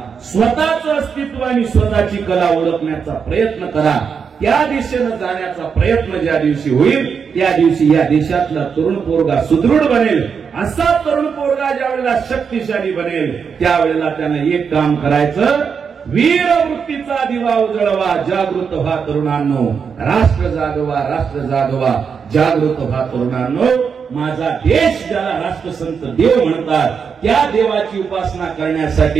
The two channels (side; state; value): left; quieter; 6.3 dB